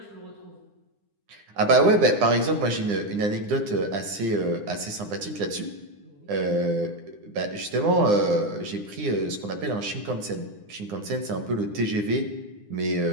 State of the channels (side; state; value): left; late; 9.8 ms